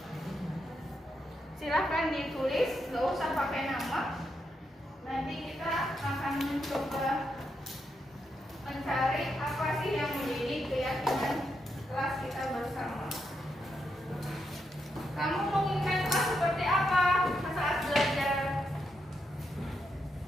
Silahkan ditulis, nggak usah pakai nama. Nanti kita akan mencoba mencari apa sih yang menjadi keyakinan kelas kita bersama. Kamu menginginkan kelas seperti apa saat belajar?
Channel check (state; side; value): normal; both; correlation 0.82